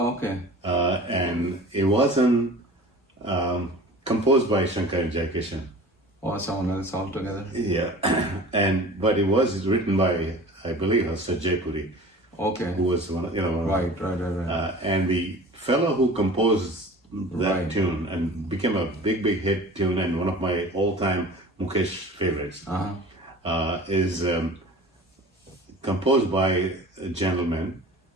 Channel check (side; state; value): both; normal; correlation 0.41